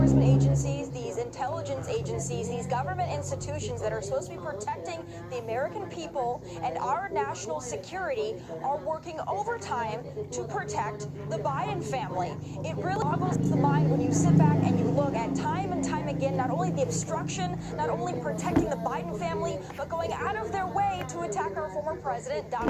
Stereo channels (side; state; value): both; identical; correlation 1.00